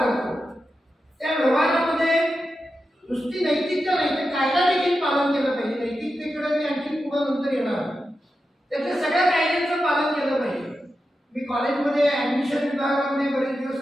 त्या व्यवहारामध्ये नुसती नैतिकता नाही तर कायदा देखील पालन केलं पाहिजे. नैतिकतेकडे मी आणखी पुढे नंतर येणार. त्यातल्या सगळ्या कायद्यांचं पालन केलं पाहिजे. मी कॉलेजमध्ये ऍडमिशन विभागामध्ये बरेच दिवस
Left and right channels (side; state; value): both; normal; correlation 0.90